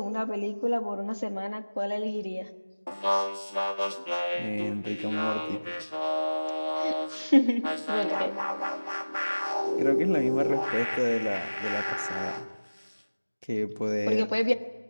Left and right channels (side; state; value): both; inverted; correlation -1.00